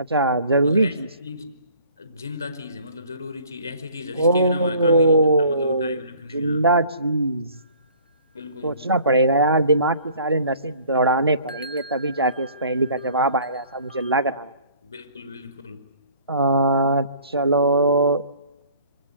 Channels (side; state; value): both; inverted; correlation -0.53